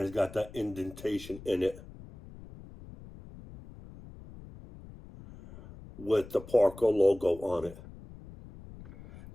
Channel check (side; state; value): left; noise; rumble, 17 dB below the sound